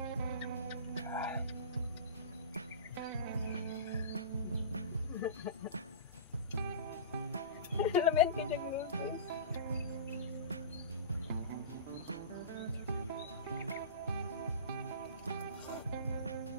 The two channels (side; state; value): both; inverted; correlation -0.30